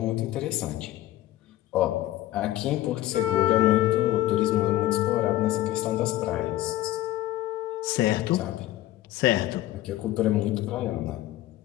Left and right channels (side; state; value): right; quieter; 15.2 dB